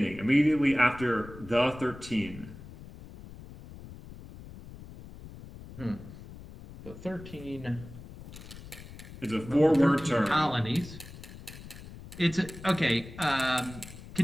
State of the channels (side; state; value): left; noise; rumble, 15 dB below the sound